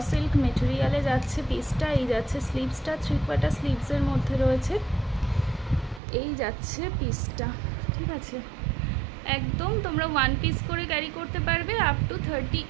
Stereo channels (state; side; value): drops out; left; at 6.0 s